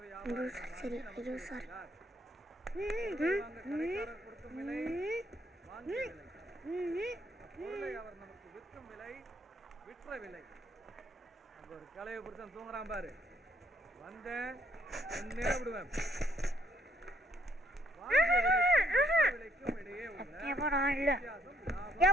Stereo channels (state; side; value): normal; both; correlation 0.70